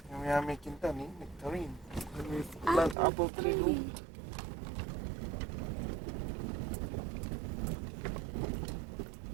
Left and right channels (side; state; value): left; drops out; at 3.0 s